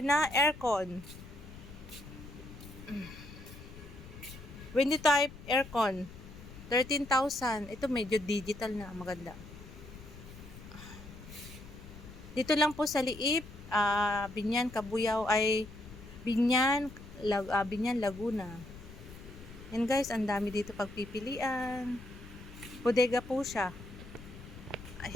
aircon. Windy type aircon. 13,000. Ito medyo digital na. Maganda. Dito lang po sa Liip, Binyan, Kabuyao ay Binyan, Laguna. Yan guys, ang dami dito pagpipilian. Bodega po siya.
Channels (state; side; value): noise; left; rumble, 15 dB below the sound